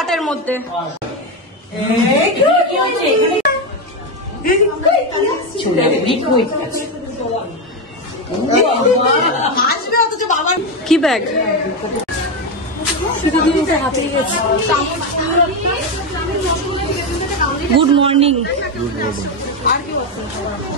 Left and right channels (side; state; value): both; normal; correlation 0.11